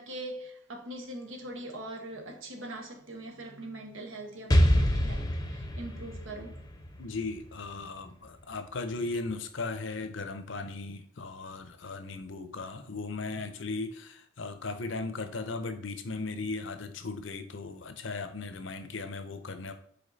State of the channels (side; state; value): both; normal; correlation 0.71